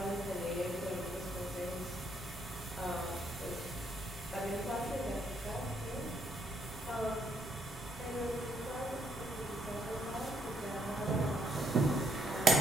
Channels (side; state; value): both; normal; correlation 0.73